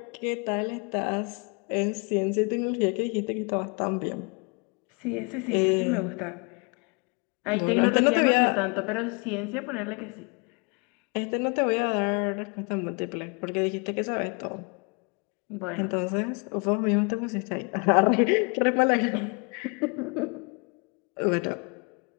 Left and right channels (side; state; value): right; quieter; 33.0 dB